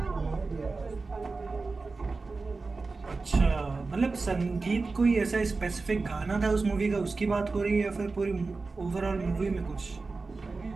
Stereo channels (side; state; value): left; quieter; 3.9 dB